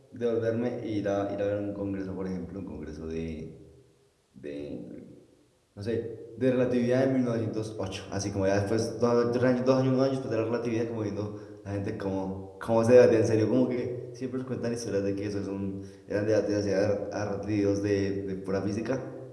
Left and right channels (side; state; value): both; identical; correlation 1.00